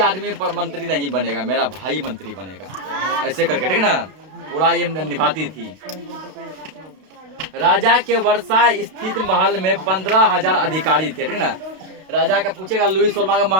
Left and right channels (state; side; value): late; left; 32 ms